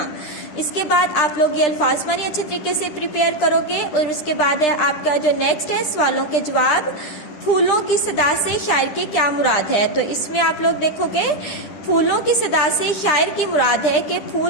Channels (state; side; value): late; right; 10 ms